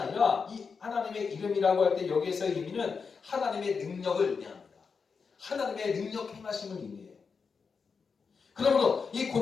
이 하나님의 이름이라고 할 때 여기에서의 의미는 하나님의 능력을 의미합니다. 하나님의 능력 행하심을 의미해요. 그러므로 이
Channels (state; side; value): quieter; right; 5.4 dB